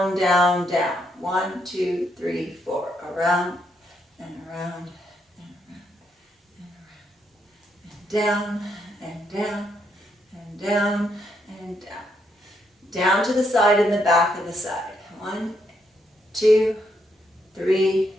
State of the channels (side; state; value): both; normal; correlation 0.77